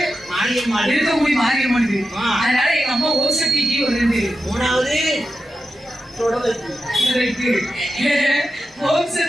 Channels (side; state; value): both; normal; correlation 0.90